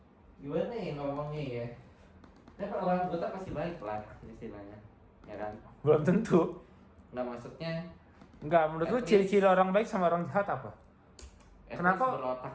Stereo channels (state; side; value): identical; both; correlation 1.00